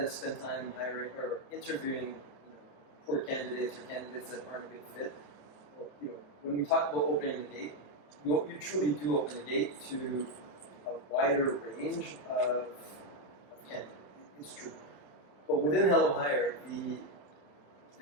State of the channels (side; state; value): right; late; 27 ms